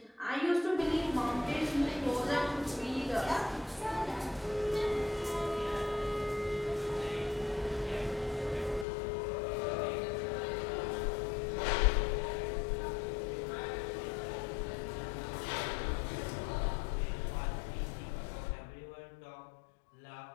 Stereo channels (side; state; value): right; drops out; at 8.8 s